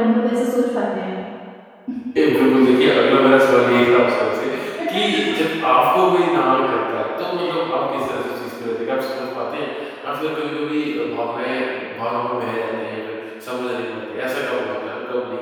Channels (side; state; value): both; identical; correlation 1.00